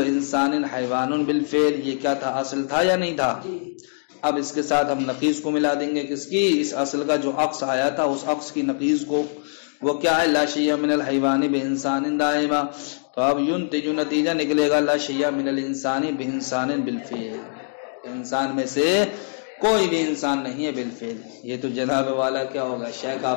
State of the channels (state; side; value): silent; right; digital silence